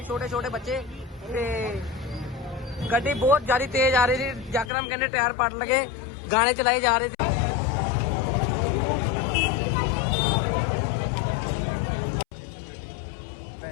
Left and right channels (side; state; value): right; drops out; at 4.7 s